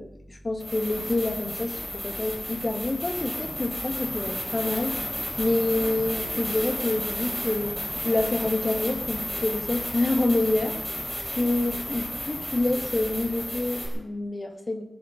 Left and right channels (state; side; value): normal; both; correlation 0.97